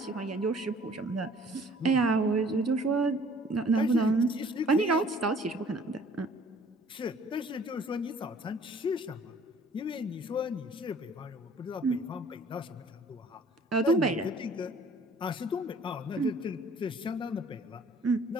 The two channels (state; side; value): normal; both; correlation 0.54